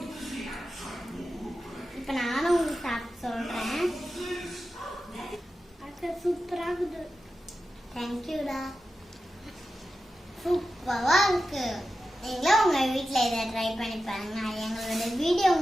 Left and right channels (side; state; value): both; normal; correlation 0.92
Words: இப்போ நானும் உங்களுக்கு சாப்பிட்டு சொல்கிறேன். சூப்பராக இருக்குது. தேங்க்யூடா. சூப்பரா இருக்கு. நீங்களும் உங்க வீட்ல இதை ட்ரை பண்ணி பாருங்க. எங்களோட வீடியோ